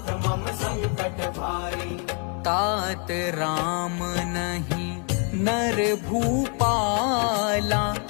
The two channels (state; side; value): quieter; right; 38.1 dB